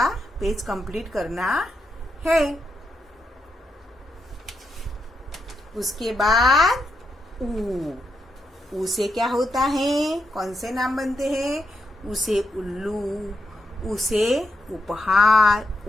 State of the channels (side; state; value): both; normal; correlation 0.83